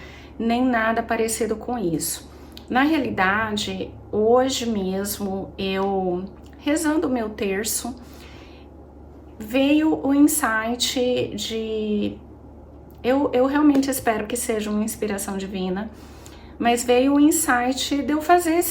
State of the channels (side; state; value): both; identical; correlation 1.00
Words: nem nada parecido com isso. Na realidade, hoje mesmo, eu rezando o meu terço, veio o insight de... Eu realmente espero que seja uma inspiração divina, mas veio o insight de eu fazer